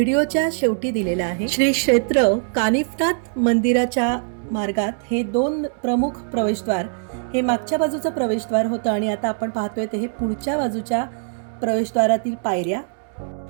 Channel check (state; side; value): silent; left; 64 dB below the other